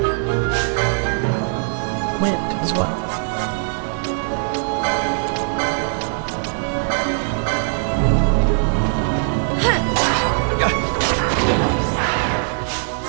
Wind as well.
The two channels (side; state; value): left; silent; digital silence